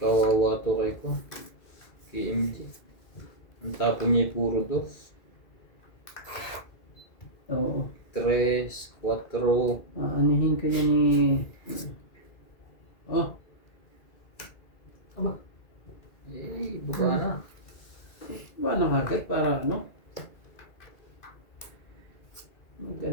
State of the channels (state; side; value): late; right; 2.4 ms